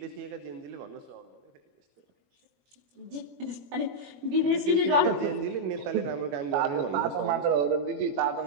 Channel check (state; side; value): late; left; 21 ms